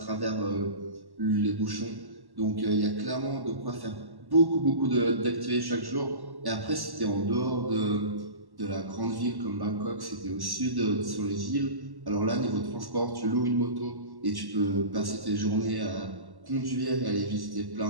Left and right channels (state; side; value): late; left; 1.1 ms